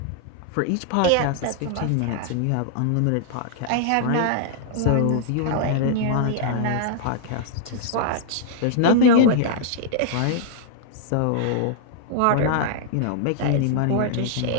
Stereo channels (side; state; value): both; different; correlation -0.01